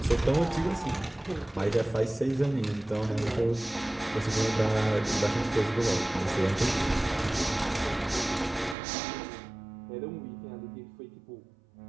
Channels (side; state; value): left; drops out; at 8.8 s